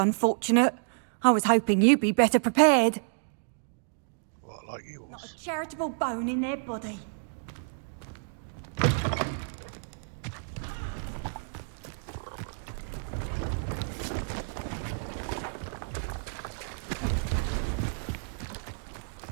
I was hoping you'd be better prepared. What, like yours? Not a charitable bone in their body.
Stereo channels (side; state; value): left; silent; digital silence